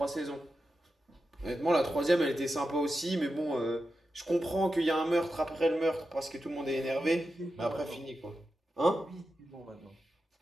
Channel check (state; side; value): normal; both; correlation 0.90